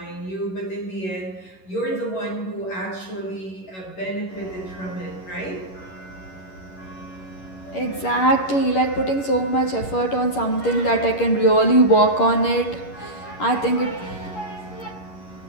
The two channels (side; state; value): right; late; 11 ms